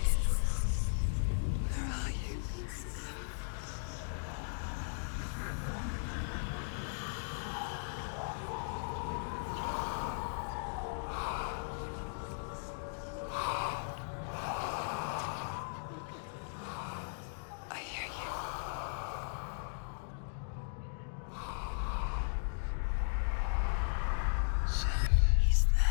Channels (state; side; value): silent; right; digital silence